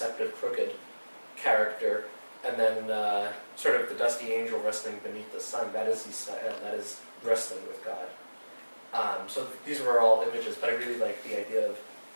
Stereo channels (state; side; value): inverted; both; correlation -1.00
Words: crooked character. And then sort of the dusty angel wrestling beneath the sun, that is Yisrael, that is wrestling with God. So these were all images, but I really like the idea of